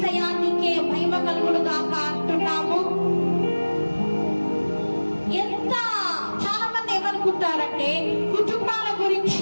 నీకే మహిమ కలుగును గాక అంటున్నాము. చాలా మంది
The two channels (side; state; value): both; inverted; correlation -1.00